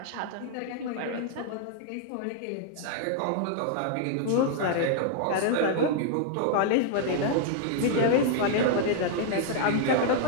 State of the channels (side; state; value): both; different; correlation 0.00